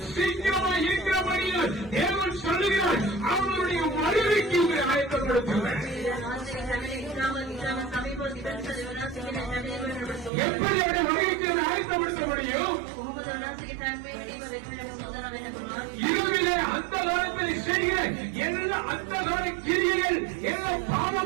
சீக்கிரமாக இருக்கிறபடியில் தேவன் சொல்லுகிறார். அவருடைய வருகைக்கு உங்களை ஆயத்தப்படுத்துங்கள். எப்படி அவருடைய வருகைக்கு ஆயத்தப்படுத்த முடியும்? இருவிலே அந்த காலத்தில் செய்கிற எல்லா அந்த கால கிரியைகள், எல்லா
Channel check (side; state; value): left; drops out; at 10.3 s